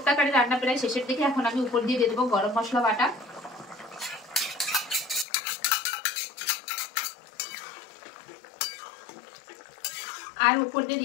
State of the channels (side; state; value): right; drops out; at 5.2 s